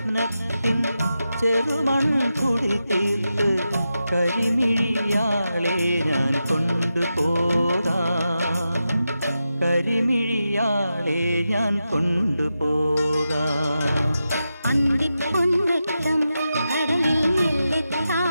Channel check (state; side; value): inverted; both; correlation -0.89